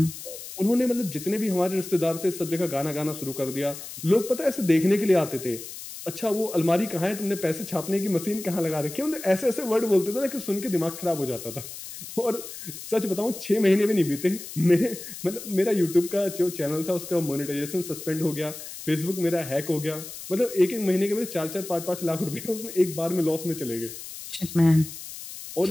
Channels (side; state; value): left; noise; hiss, 12 dB below the sound